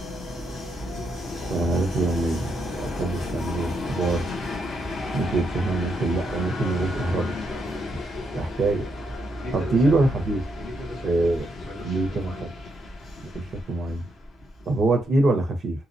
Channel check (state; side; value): normal; both; correlation 0.80